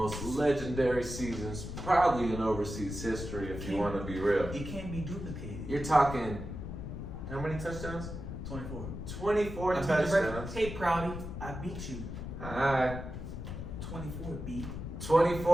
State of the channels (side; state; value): left; noise; rumble, 7 dB below the sound